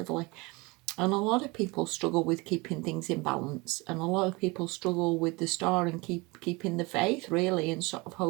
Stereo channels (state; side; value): quieter; left; 25.1 dB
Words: And a lot of people struggle with keeping things in balance, and a lot of people struggle with the Star and keeping the faith, really, and sort of